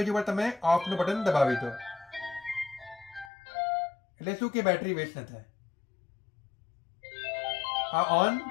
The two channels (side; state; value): right; drops out; at 3.3 s